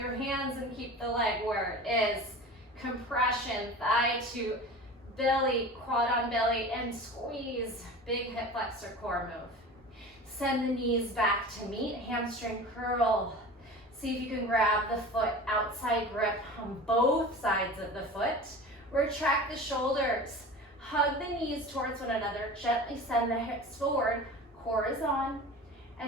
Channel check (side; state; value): both; normal; correlation 0.35